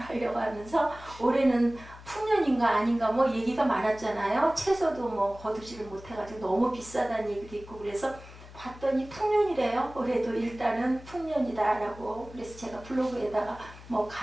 하면서 올해는 풍년인가 아닌가 뭐 얘기가 많았잖아요. 채소도 뭐 거두지를 못해가지고 너무 비싸다는 얘기도 있고 그래서 봤더니 풍년이래요. 올해도 일단은 풍년이다라고. 그래서 제가 블로그에다가 뭐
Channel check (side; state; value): left; noise; hum, 18 dB below the sound